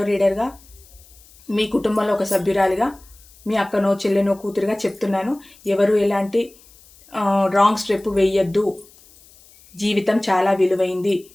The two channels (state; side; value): noise; left; hiss, 26 dB below the sound